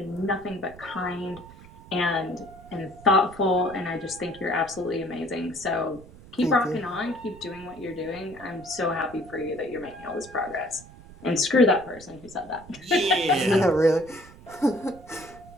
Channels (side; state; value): right; noise; rumble, 20 dB below the sound